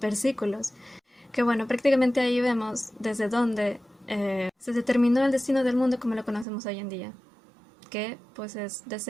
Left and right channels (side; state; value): left; drops out; at 6.5 s